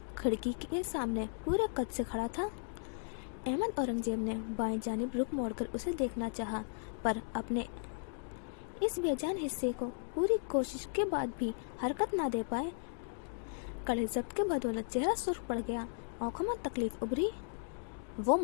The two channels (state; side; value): silent; right; digital silence